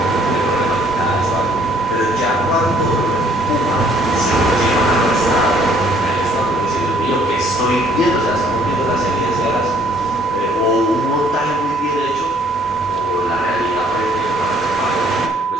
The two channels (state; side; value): normal; both; correlation 0.61